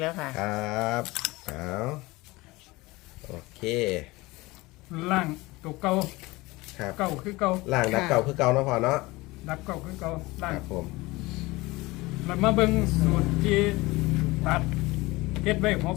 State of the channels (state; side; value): quieter; right; 21.5 dB